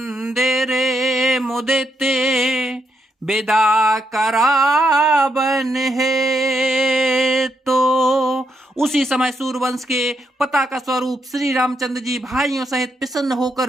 मुदिते विदा करावन है। तो उसी समय सूर्यवंश के पताका स्वरूप श्री रामचंद्र जी भाइयों सहित प्रसन्न होकर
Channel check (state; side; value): normal; both; correlation 0.79